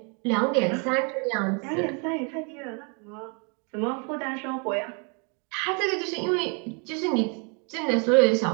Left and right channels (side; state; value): left; quieter; 35.7 dB